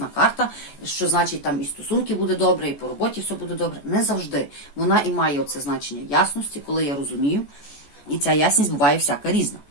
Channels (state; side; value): late; right; 14 ms